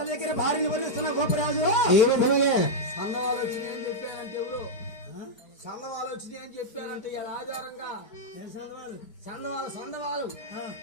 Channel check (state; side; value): late; right; 4.4 ms